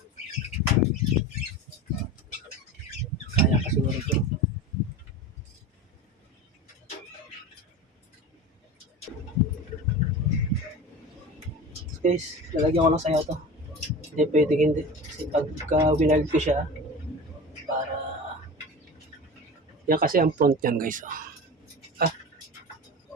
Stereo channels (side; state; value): both; normal; correlation 0.32